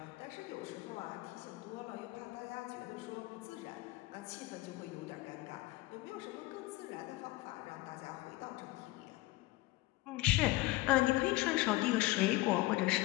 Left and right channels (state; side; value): quieter; right; 19.8 dB